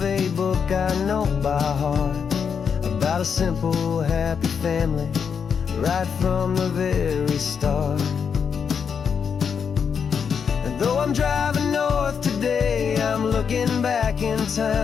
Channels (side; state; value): right; quieter; 6.7 dB